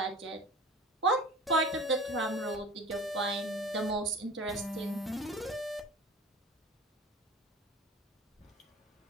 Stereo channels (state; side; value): normal; both; correlation 0.39